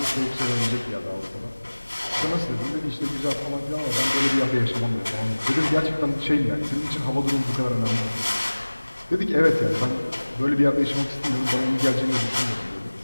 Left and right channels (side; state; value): both; inverted; correlation -1.00